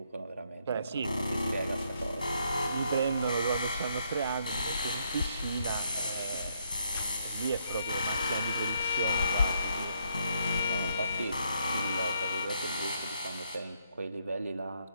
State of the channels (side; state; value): both; inverted; correlation -0.73